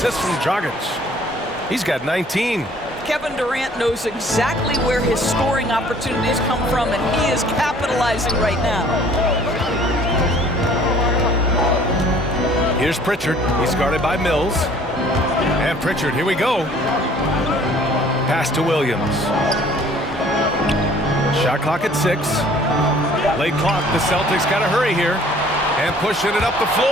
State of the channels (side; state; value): both; normal; correlation 0.55